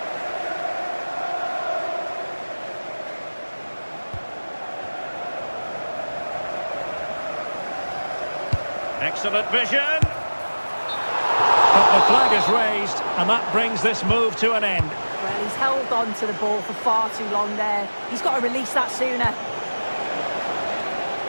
Excellent vision. But the flag is raised, and that brings this move to an end. Well, he's held on to the ball for far too long there. He's got to release that sooner.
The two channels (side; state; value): both; inverted; correlation -1.00